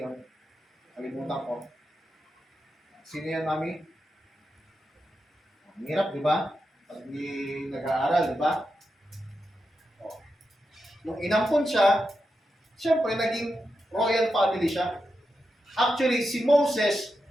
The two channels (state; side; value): normal; both; correlation 0.88